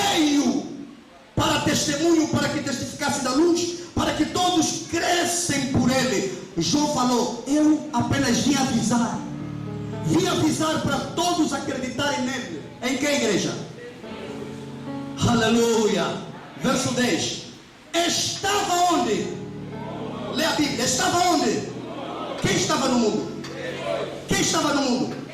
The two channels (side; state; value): both; identical; correlation 1.00